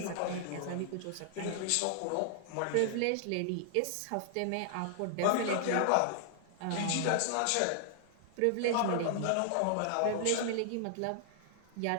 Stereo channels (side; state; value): both; different; correlation -0.01